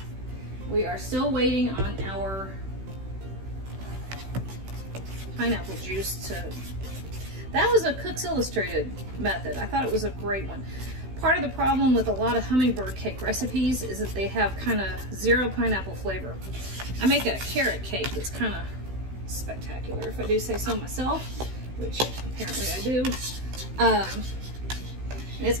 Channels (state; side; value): late; left; 16 ms